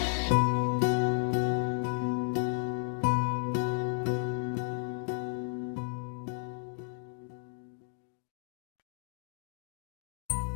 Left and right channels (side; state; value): right; silent; digital silence